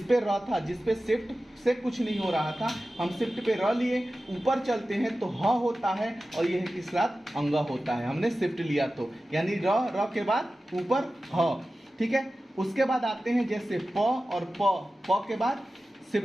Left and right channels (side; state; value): both; normal; correlation 0.95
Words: पे र था, जिस पे शिफ्ट से कुछ नहीं हो रहा था, हम शिफ्ट पे र लिए, ऊपर चलते हैं तो ह होता है और यह किस साथ अंग होता है, हमने शिफ्ट लिया तो, यानी र के बाद ऊपर ह। ठीक है। उसके बाद आते हैं जैसे प और प के बाद